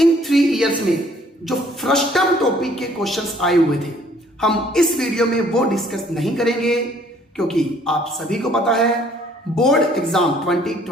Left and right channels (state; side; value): normal; both; correlation 0.60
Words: 3 इयर्स में जो फ्रस्टम टॉपिक के क्वेश्चंस आए हुए थे, हम इस वीडियो में वो डिस्कस नहीं करेंगे, क्योंकि आप सभी को पता है बोर्ड एग्जाम